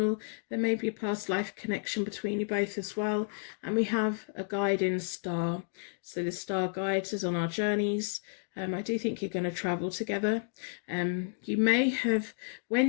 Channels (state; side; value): silent; right; digital silence